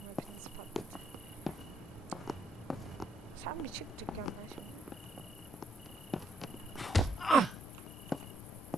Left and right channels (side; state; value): both; normal; correlation 0.75